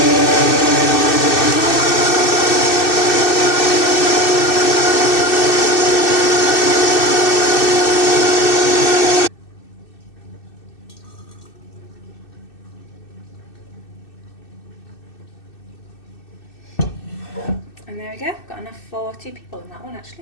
And there we go, got enough for 2 people in that one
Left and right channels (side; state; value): right; late; 2.6 ms